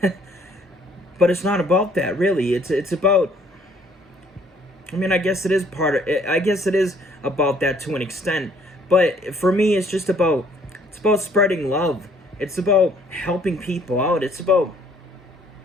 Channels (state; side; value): normal; both; correlation 0.61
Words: But it's not about that, really. It's about, I guess it is about that to an extent, but for me, it's about spreading love. It's about helping people out. It's about